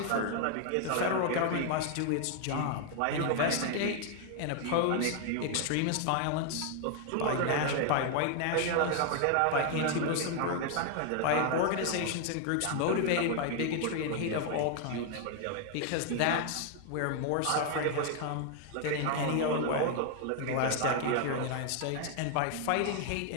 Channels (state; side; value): different; both; correlation 0.00